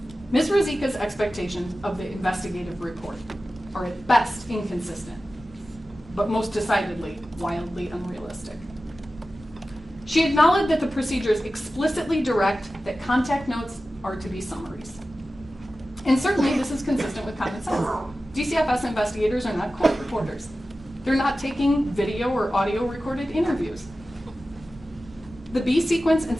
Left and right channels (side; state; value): both; normal; correlation 0.95